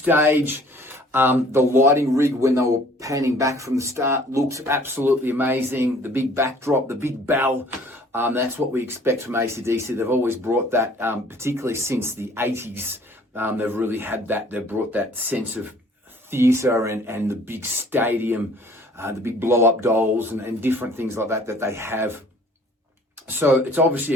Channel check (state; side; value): normal; both; correlation 0.54